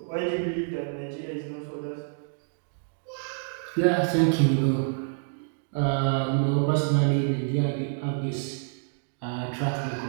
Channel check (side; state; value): left; silent; digital silence